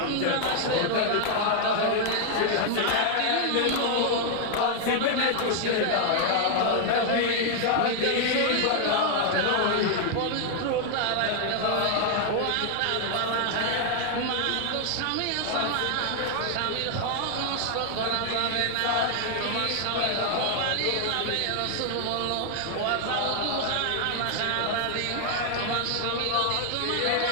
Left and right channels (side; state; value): both; different; correlation 0.00